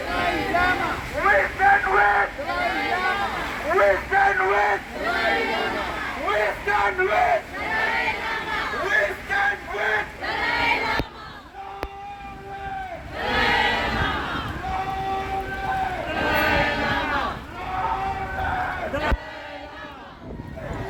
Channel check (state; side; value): identical; both; correlation 1.00